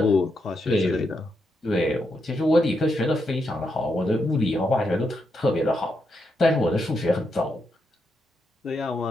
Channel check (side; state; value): both; normal; correlation 0.82